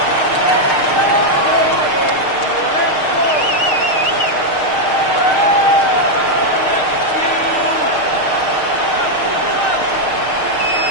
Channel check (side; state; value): right; late; 6.5 ms